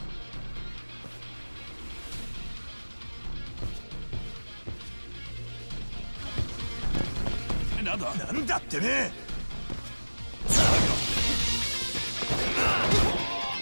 another. なんだってね。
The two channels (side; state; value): both; inverted; correlation -1.00